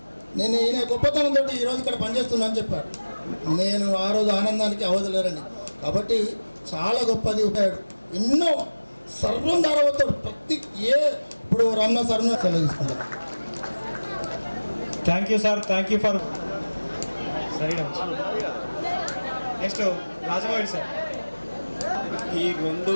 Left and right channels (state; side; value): inverted; both; correlation -1.00